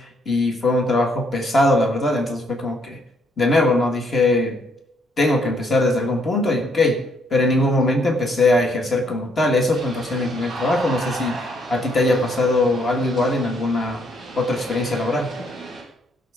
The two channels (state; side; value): normal; both; correlation 0.70